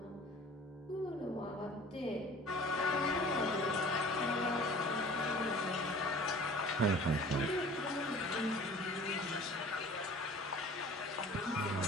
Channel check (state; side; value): normal; both; correlation 0.46